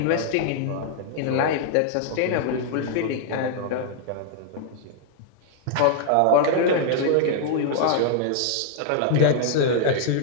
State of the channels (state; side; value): different; both; correlation 0.00